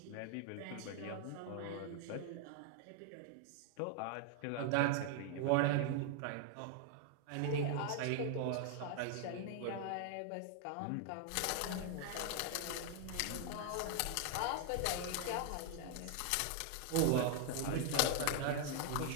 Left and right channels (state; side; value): different; both; correlation 0.00